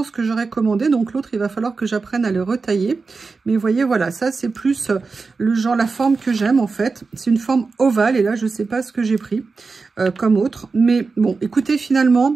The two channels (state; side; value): quieter; left; 4.3 dB